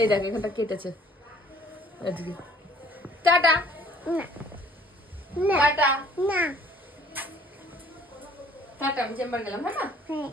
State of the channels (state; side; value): normal; both; correlation 0.56